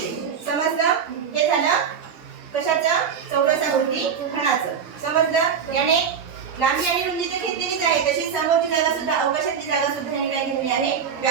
समजलं? हे झालं कशाचं? चौरसाकृती घनाचं. समजलं? याने लांबी आणि रुंदी तर घेतलेलीच आहे, तशी समोरची जागा सुद्धा, अवकाशातली जागा सुद्धा याने काय घेतली आहे?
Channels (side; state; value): left; quieter; 7.1 dB